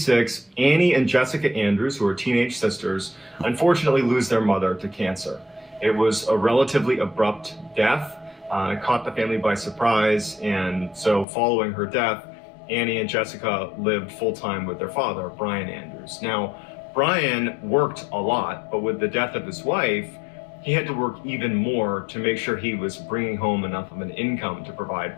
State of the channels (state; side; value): drops out; right; at 11.2 s